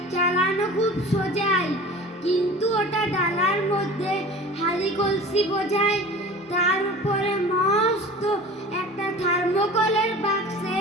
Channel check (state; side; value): normal; both; correlation 0.39